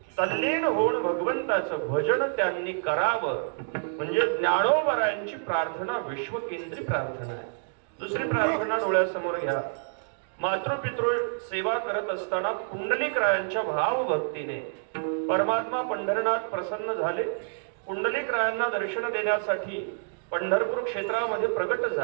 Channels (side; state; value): left; silent; digital silence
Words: तल्लीन होऊन भगवंताचं भजन त्यांनी करावं. म्हणजे ज्ञानोबरायांची प्रार्थना विश्वकेंद्री प्रार्थना आहे. दुसरी प्रार्थना डोळ्यासमोर घ्या. मातृपितृ सेवा करत असताना पुंडलिकरायांच्या भावभक्तीने परमात्मा पंढरनाथ प्रसन्न झाले. पुंडलिकरायांना दर्शन देण्यासाठी पंढरपूर क्षेत्रामध्ये प्रकट